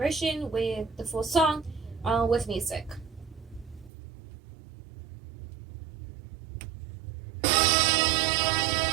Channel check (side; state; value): left; drops out; at 3.9 s